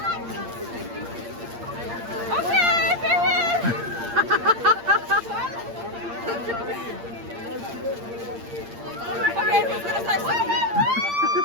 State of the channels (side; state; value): left; late; 8.7 ms